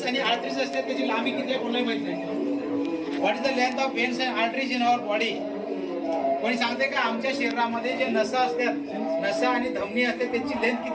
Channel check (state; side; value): identical; both; correlation 1.00